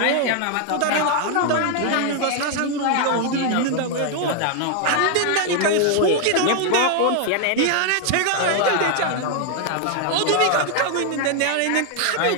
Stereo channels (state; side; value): different; both; correlation 0.00